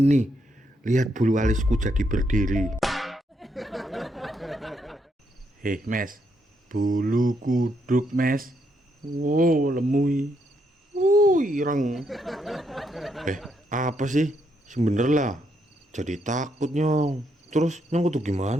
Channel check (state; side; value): normal; both; correlation 0.77